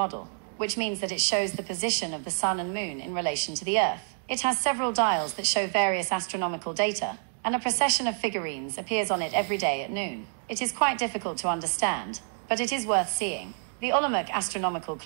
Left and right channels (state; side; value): silent; left; 59 dB below the other